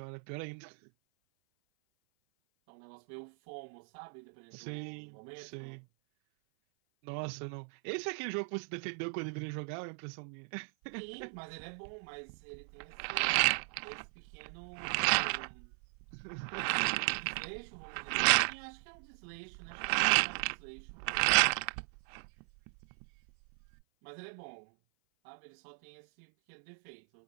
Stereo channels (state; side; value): silent; left; 54 dB below the other